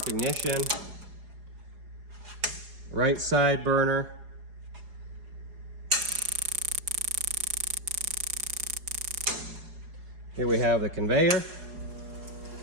ignition, right side burner, here we have the conveyor,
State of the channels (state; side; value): late; left; 4.8 ms